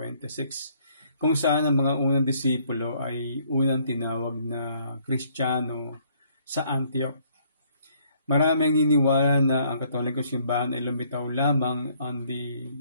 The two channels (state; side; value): inverted; both; correlation -0.65